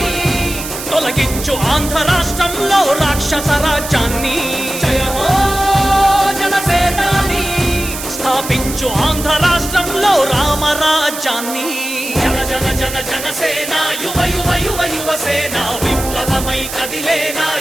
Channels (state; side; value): noise; right; hiss, 8 dB below the sound